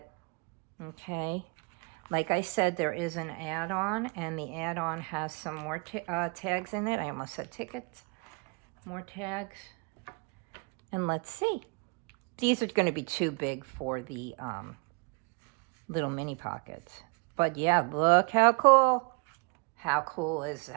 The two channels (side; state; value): left; quieter; 33.9 dB